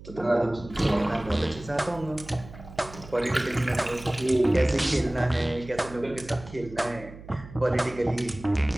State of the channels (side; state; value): right; noise; hum, 16 dB below the sound